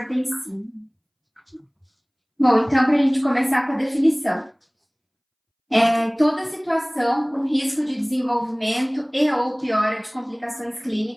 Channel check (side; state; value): both; identical; correlation 1.00